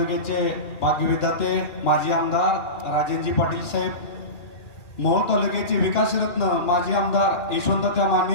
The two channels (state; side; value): late; right; 2.4 ms